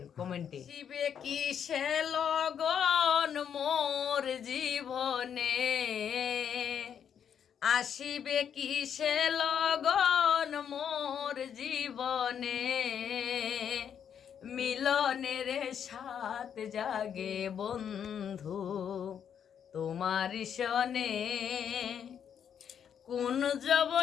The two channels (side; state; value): right; quieter; 8.3 dB